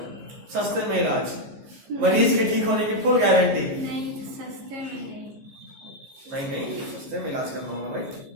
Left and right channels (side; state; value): left; late; 15 ms